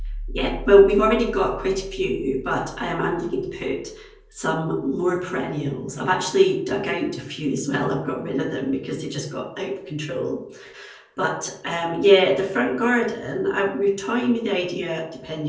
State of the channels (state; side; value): identical; both; correlation 1.00